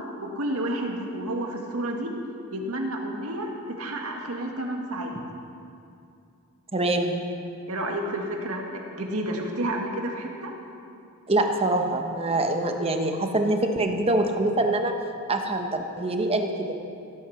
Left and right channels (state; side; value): normal; both; correlation 0.30